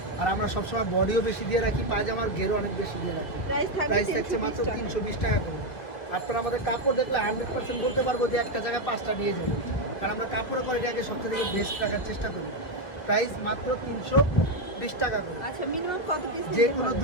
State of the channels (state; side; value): late; right; 2.3 ms